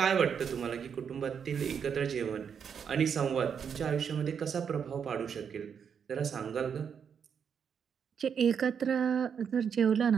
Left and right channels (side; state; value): left; quieter; 7.2 dB